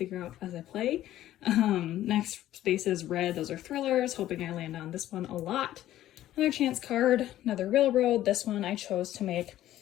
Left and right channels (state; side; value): quieter; right; 13.5 dB